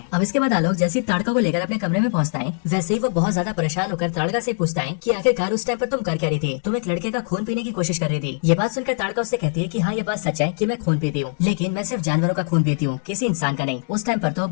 अब इसके बाद आलोक जैसी ताड़का को लेकर अपने कमरे में पहुंचता है, वैसे ही वो बहुत ज्यादा परेशान होकर ताड़का से पूछता है कि आखिरकार उस टाइम पर तुम कर क्या रही थी? तुम एक लड़के का खून पीने की कोशिश कर रही थी। ये बात सुनकर ताड़का उससे कहती है कि हाँ, ये बात सच है कि मैं खून पीती हूँ, लेकिन मैं सिर्फ जानवरों का खून पीती हूँ, किसी इंसान का नहीं। उस टाइम पर तो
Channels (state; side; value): silent; right; 64 dB below the other